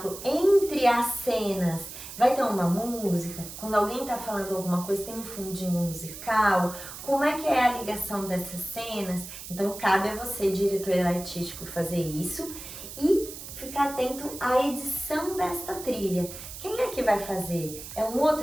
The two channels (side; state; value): right; noise; hiss, 12 dB below the sound